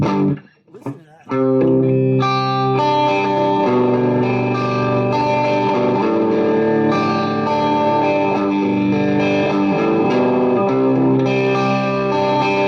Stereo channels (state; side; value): identical; both; correlation 1.00